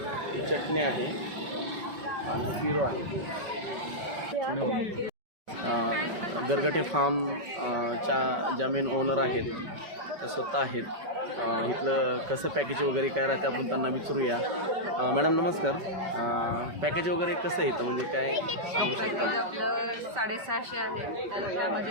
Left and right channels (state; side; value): late; left; 5.2 ms